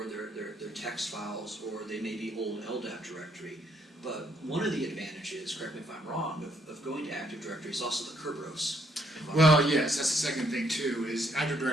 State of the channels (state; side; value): normal; both; correlation 0.71